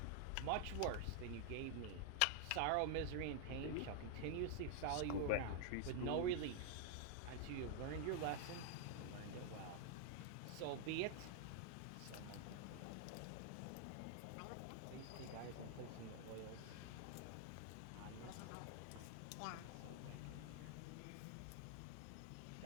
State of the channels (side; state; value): both; different; correlation 0.00